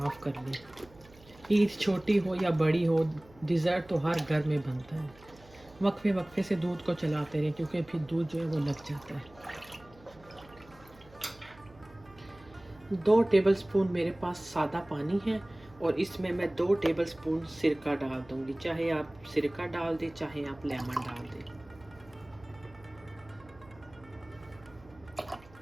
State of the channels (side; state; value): right; noise; hum, 24 dB below the sound